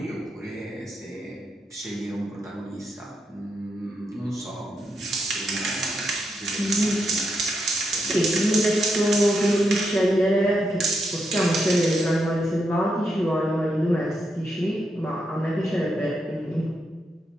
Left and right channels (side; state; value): both; normal; correlation 0.82